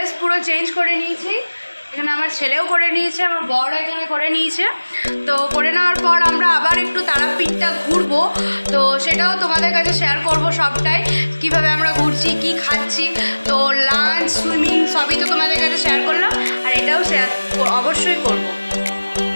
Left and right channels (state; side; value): inverted; both; correlation -1.00